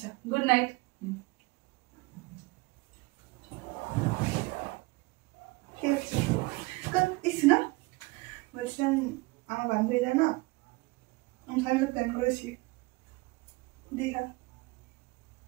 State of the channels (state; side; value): quieter; left; 24.3 dB